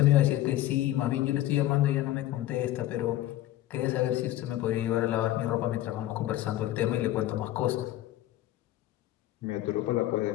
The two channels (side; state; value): right; quieter; 14.6 dB